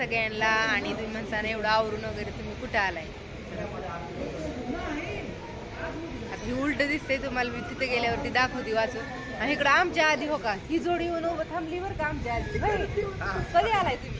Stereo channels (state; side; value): identical; both; correlation 1.00